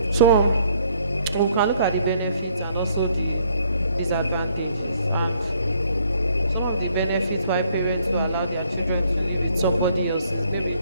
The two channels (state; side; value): inverted; both; correlation -0.65